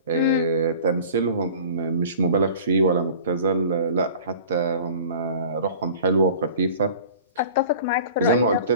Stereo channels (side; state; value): both; inverted; correlation -0.43